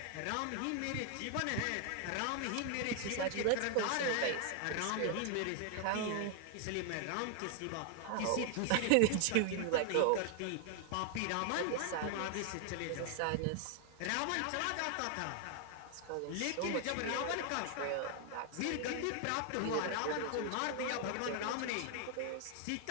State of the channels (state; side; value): different; both; correlation 0.00